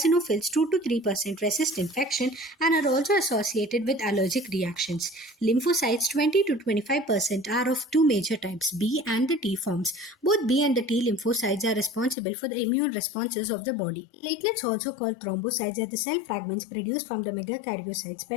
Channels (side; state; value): right; drops out; at 12.2 s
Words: 2 to 3%, resist infection and are also associated with allergic reactions. Lymphocytes, 20 to 25%, are of two major types, B and the T forms. Both B and the T lymphocytes are responsible for the immune responses of the body. Platelets, also called thrombocytes, are the cell fragments produced from the megakaryocytes,